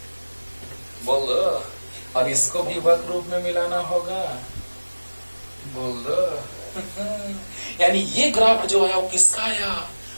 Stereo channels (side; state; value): both; inverted; correlation -1.00